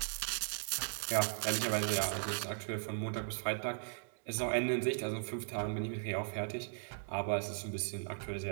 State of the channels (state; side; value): silent; left; digital silence